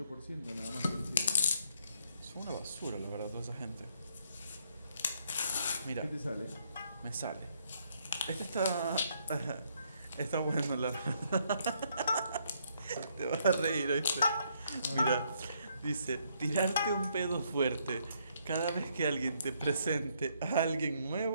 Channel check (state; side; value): inverted; both; correlation -0.71